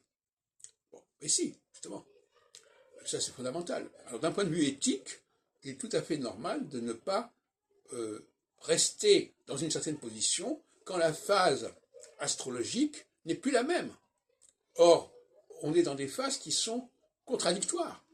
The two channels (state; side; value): identical; both; correlation 1.00